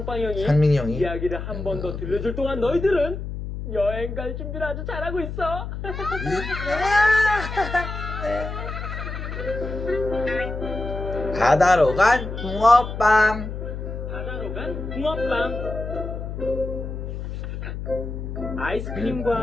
형이 상민이 형이 이야기를 한 번 더 들려줄 동안 너희들은 여행 갈 준비를 아주 잘하고 있어. 바다로 간 붕어빵. 바다로 간 붕어빵.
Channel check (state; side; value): noise; left; hum, 6 dB below the sound